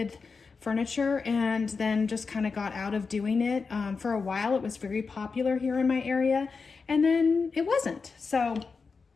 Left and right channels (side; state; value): right; quieter; 4.8 dB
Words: furniture and then just kind of got out of doing it. For a while, it was very popular here in my area, and then it wasn't. So